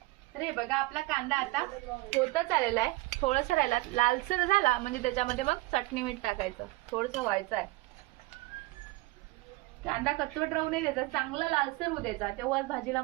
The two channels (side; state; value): left; quieter; 21.2 dB